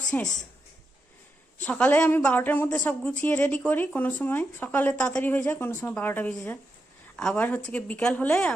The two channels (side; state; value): both; normal; correlation 0.85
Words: শেষ। সকালে আমি 12টার মধ্যে সব গুছিয়ে রেডি করি, কোনো সময় সকালে তাড়াতাড়ি হয়ে যায়, কোনো সময় 12টা বেজে যায়। আবার হচ্ছে কি বিকাল হলে